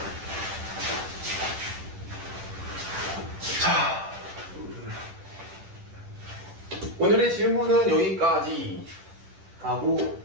오늘의 질문은 여기까지 하고,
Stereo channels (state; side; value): late; left; 10 ms